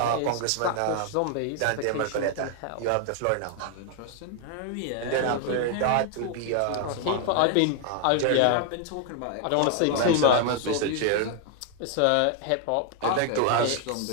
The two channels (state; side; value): different; both; correlation 0.00